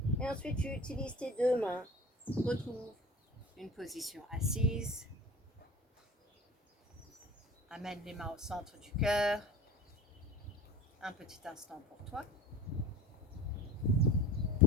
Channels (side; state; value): both; normal; correlation 0.38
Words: Et ensuite, tu utilises tes deux mains. Retrouve une position assise. Amène les mains au centre du cœur. Un petit instant pour toi.